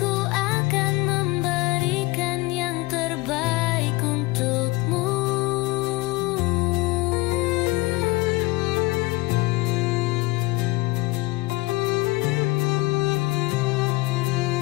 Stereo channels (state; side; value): quieter; right; 22.5 dB